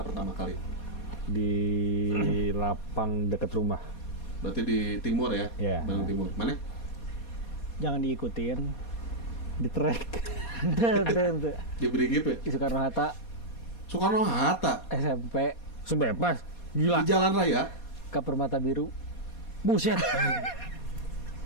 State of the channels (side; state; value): right; late; 4.2 ms